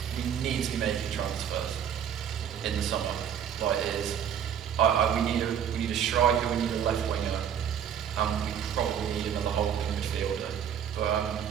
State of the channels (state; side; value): quieter; left; 8.8 dB